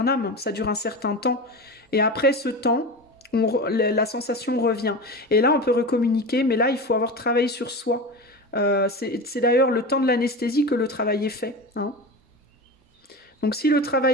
ça dure un certain temps. Et après ce temps, la sensation revient. Et là, on peut recommuniquer, mais là, il faut avoir travaillé sur soi. C'est d'ailleurs le temps de l'anesthésie que le travail est fait, hein. Donc si le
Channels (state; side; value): normal; both; correlation 0.27